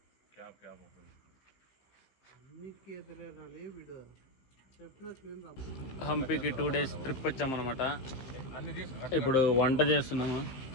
హంపీకి 2 days ట్రిప్ వచ్చామన్నమాట. ఇప్పుడు వంట చేస్తున్నాము.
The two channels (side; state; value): right; late; 15 ms